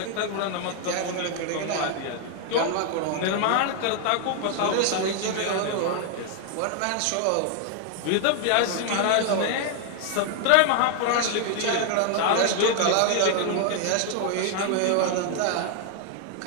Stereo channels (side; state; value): both; different; correlation 0.00